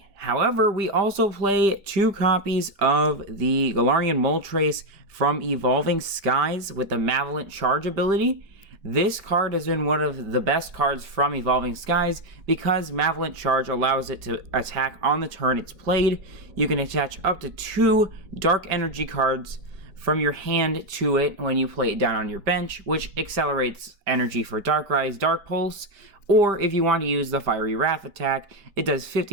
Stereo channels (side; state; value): left; late; 5.1 ms